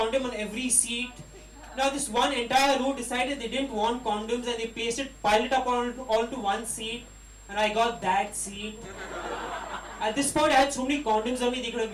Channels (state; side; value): identical; both; correlation 1.00